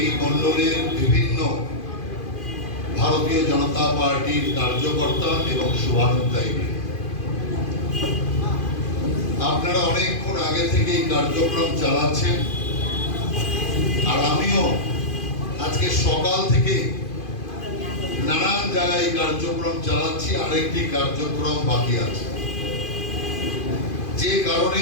মণ্ডলের বিভিন্ন ভারতীয় জনতা পার্টির কার্যকর্তা এবং শুভানুধ্যায়ী, আপনারা অনেকক্ষণ আগে থেকে এই কার্যক্রম চালাচ্ছেন, আর আমিও আজকে সকাল থেকে নানান জায়গায় কার্যক্রম চালাচ্ছি। আরেকটি কার্যক্রম বাকি আছে, যে কারণে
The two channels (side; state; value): right; late; 2.5 ms